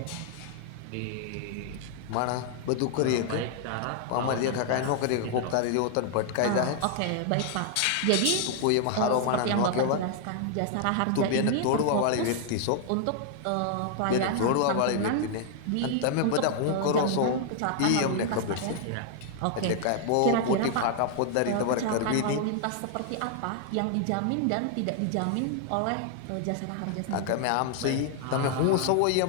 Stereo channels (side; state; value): both; different; correlation 0.00